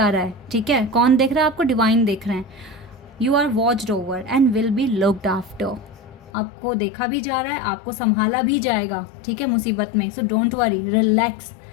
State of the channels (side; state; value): right; drops out; at 6.3 s